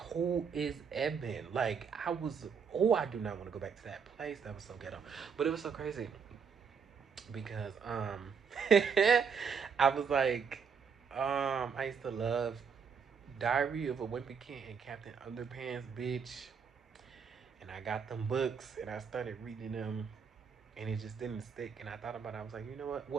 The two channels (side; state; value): left; quieter; 6.3 dB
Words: is Eben? Like, I do not want to go back to that place. That was so ghetto. But it was so crazy because, I was like, I used to love Diary of a Wimpy Kid and Captain Underpants, bitch. And I got them books and I started reading them and it just didn't stick. And I thought about it. I was like, you know what?